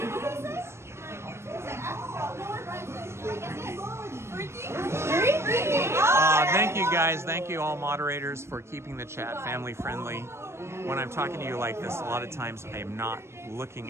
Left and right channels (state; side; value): late; left; 0.13 ms